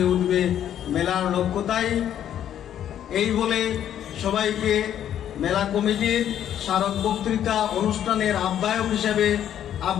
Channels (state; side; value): quieter; right; 10.4 dB